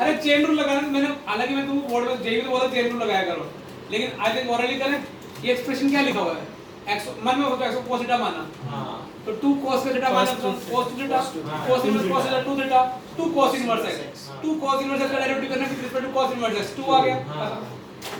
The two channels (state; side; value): identical; both; correlation 1.00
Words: चेन रूल लगाना, मैंने हालांकि मैं तुमको बोर्ड में जेई में बोला चेन रूल लगाया करो, लेकिन आज एक ओरली करें, ये एक्सप्रेशन क्या लिखा हुआ है? x मन में होता है x cos थीटा माना, हां तो 2 cos का थीटा माना, तो cos theta, cos inverse cos theta 2 theta, 2 cos inverse x, 2 cos inverse x का डेरिवेटिव करना with respect to cos inverse x, 2 आ गया।